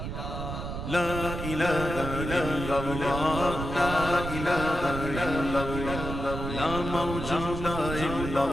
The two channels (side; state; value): right; noise; rumble, 6 dB below the sound